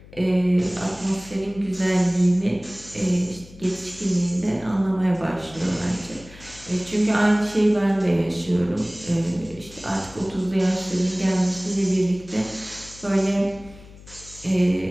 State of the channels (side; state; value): left; noise; hum, 21 dB below the sound